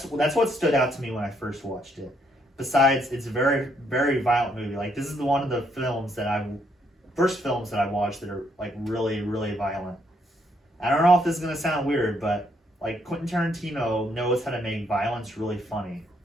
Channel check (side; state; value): both; normal; correlation 0.72